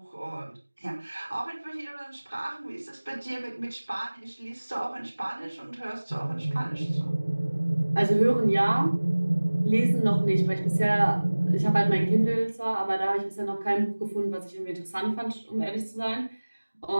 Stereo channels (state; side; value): inverted; both; correlation -1.00